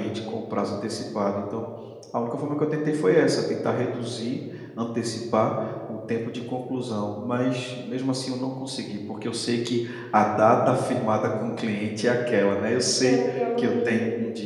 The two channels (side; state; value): both; identical; correlation 1.00